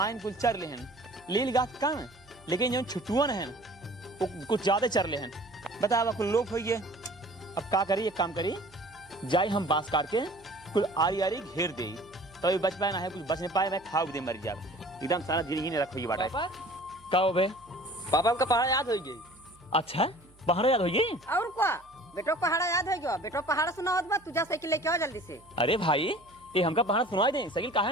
आयन कुल चर ले हैं लील गाय कम लेकिन जो छुटुअन हैं वो कुछ ज्यादा चर ले हैं बताओ कुल लोग होइए अब का करी एक काम करी जाई हम बांस काट के कुल आरी आरी घेर दे तभी बच पाए ना है कुछ बच नहीं पाए मैं खाओ दे मर जा एकदम सारा जिंदगी नहीं रखो ये बाटा पापा का हो बे पापा हमका पहाड़ याद हो गई। अच्छा बाहर याद होइए और क्या बेटो पहाड़ा याद है गयो बेटो पहाड़ा सुना होत बा तुझा साइकिल लेके आओ जल्दी से। अरे भाई ये हमका पहाड़ सुनाई दे साइकिल काहे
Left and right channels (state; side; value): noise; right; hum, 28 dB below the sound